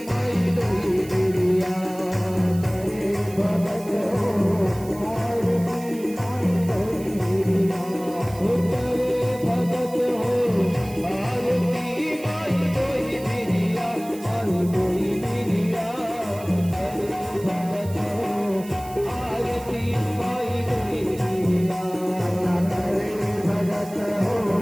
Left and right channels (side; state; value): right; noise; hiss, 19 dB below the sound